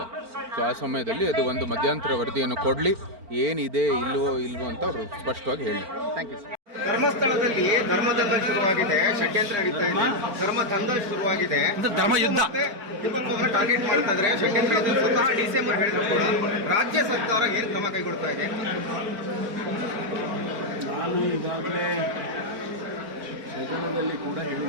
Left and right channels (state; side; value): late; left; 4.4 ms